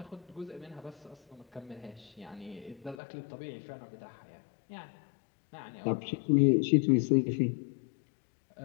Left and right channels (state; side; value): drops out; right; at 3.0 s